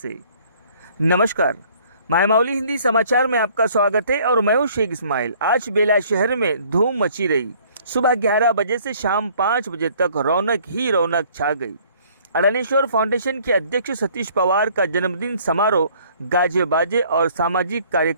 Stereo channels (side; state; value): both; inverted; correlation -0.58